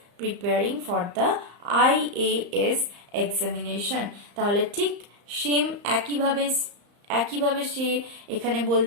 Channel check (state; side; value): late; left; 34 ms